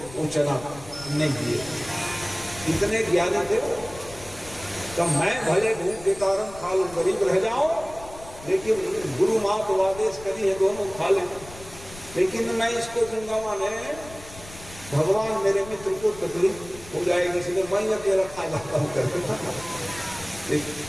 चना नहीं दिए। इतने ज्ञानी थे वो। तो मैं भले भूख के कारण खा लूं, गरीब रह जाऊं, लेकिन गुरु माँ तो आदेश करी है दोनों खा लें, लेकिन मैं इसको दूंगा माने भगवान मेरे मित्र को तकलीफ हो जाएगी, इसलिए मैं अकेला खा जाता हूँ करके।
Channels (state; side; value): noise; left; rumble, 17 dB below the sound